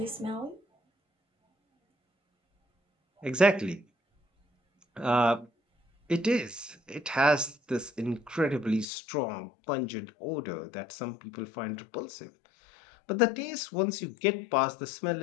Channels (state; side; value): drops out; right; at 8.8 s